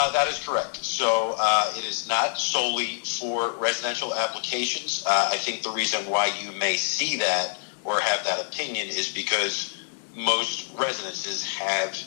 That is correct. So it is not solely for residential applications. I think the reason why you may see that or have that opinion is because most residences have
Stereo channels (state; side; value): silent; right; digital silence